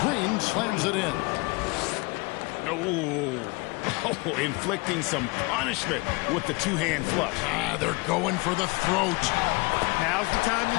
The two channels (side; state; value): right; quieter; 26.8 dB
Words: Green slams it in. Oh, inflicting some punishment with the two-hand flush. They're going for the throat. Now's the time